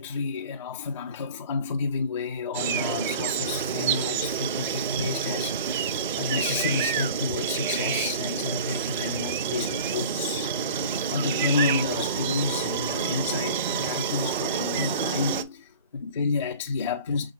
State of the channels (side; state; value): both; inverted; correlation -0.41